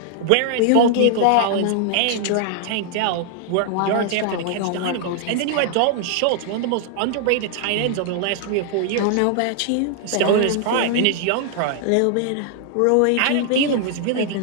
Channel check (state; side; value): different; both; correlation 0.00